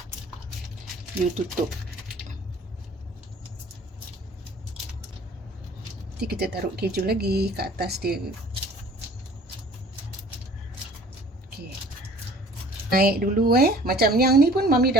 you tutup. Nanti kita taruh keju lagi ke atas dia. Okey. Naik dulu Macam yang ni pun Mami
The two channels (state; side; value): normal; both; correlation 0.50